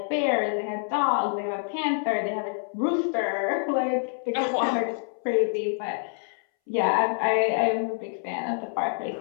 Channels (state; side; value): silent; right; 60 dB below the other